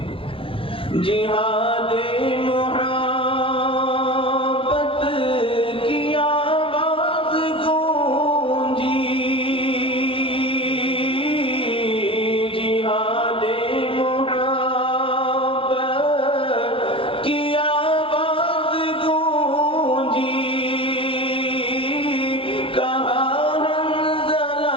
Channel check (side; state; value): right; late; 0.26 ms